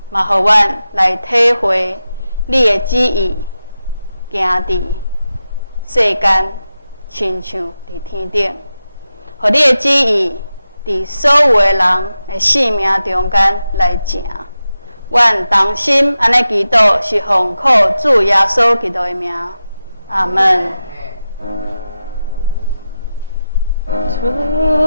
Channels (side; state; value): both; inverted; correlation -0.92